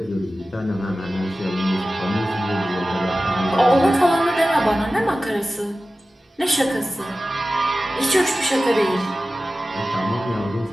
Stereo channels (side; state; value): both; normal; correlation 0.95